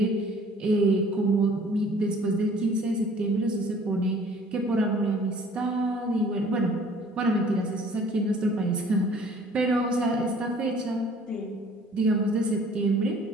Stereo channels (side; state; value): both; normal; correlation 0.53